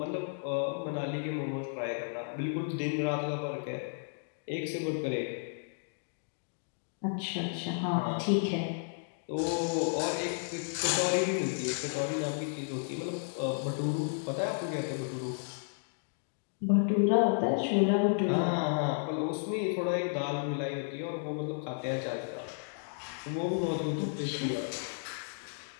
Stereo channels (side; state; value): right; silent; digital silence